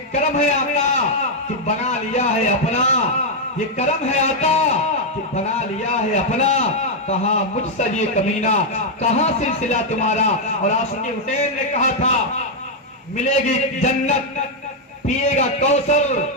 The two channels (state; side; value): normal; both; correlation -0.01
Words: کرم ہے آقا کہ بنا لیا ہے اپنا، یہ کرم ہے آقا کہ بنا لیا ہے اپنا، کہا مجھ سے یہ کمینہ، کہاں سلسلہ تمہارا۔ اور عاشق حسین نے کہا تھا ملے گی جنت، پیے گا کوثر،